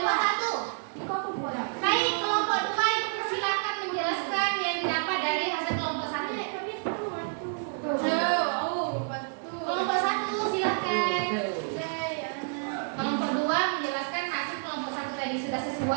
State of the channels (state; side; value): silent; left; digital silence